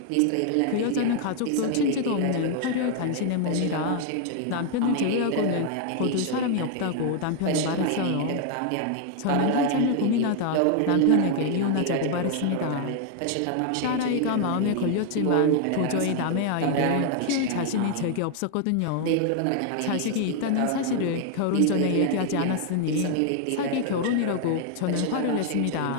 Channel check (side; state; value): both; different; correlation 0.00